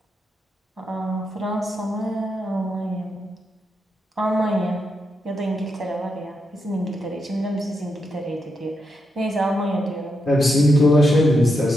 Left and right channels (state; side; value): normal; both; correlation 0.83